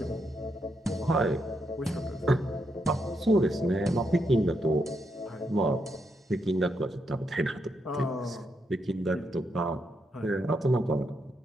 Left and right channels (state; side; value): normal; both; correlation 0.80